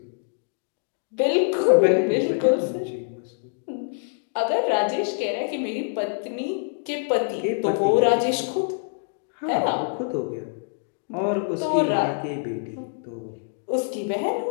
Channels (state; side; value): silent; right; digital silence